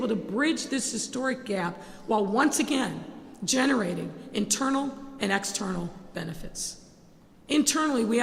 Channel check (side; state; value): both; identical; correlation 1.00